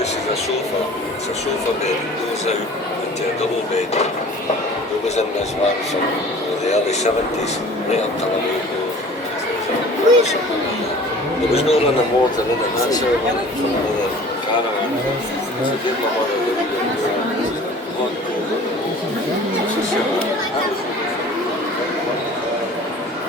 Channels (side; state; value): both; normal; correlation 0.45